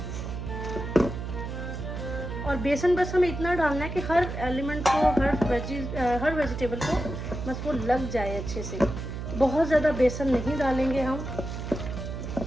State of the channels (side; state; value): right; noise; hum, 6 dB below the sound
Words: और बेसन बस हमें इतना डालना है कि हर एलिमेंट को, हर वेजिटेबल को बस वो लग जाए अच्छे से। बहुत ज़्यादा बेसन नहीं डालेंगे हम।